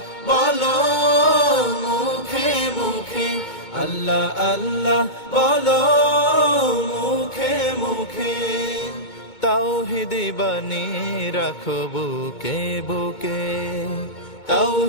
বলো মুখে মুখে, আল্লাহ আল্লাহ বলো মুখে মুখে। তাওহীদি বাণী রাখো বুকে বুকে,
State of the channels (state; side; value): late; right; 2.2 ms